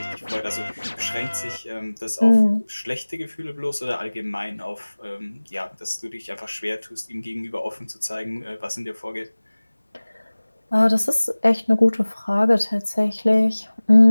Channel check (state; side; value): inverted; both; correlation -1.00